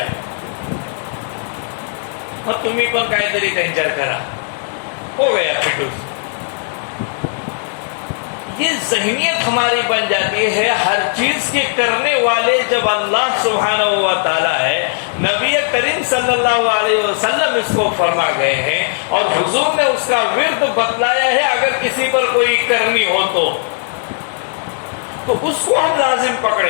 اور تمہیں پر کائتری کنچر کرا ہو گیا پھٹوس۔ یہ ذہنیت ہماری بن جاتی ہے ہر چیز کے کرنے والے جب اللہ سبحانہ و تعالیٰ ہے، نبی کریم صلی اللہ علیہ وسلم اس کو فرما گئے ہیں اور حضور نے اس کا ورد بتلایا ہے، اگر کسی پر کوئی کرنی ہو تو اس کو ہم لازم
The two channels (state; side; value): silent; right; 68 dB below the other